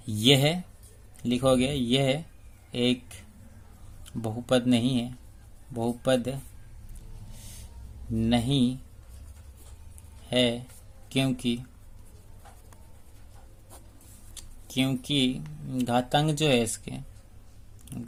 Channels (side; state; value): both; identical; correlation 1.00